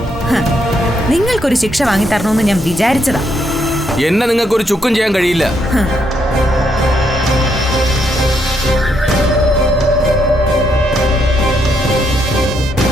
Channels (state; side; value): normal; both; correlation 0.76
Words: ഹ, നിങ്ങൾക്കൊരു ശിക്ഷ വാങ്ങിത്തരണമെന്ന് ഞാൻ വിചാരിച്ചതാ. എന്നെ നിങ്ങൾക്കൊരു ചുക്കും ചെയ്യാൻ കഴിയില്ല.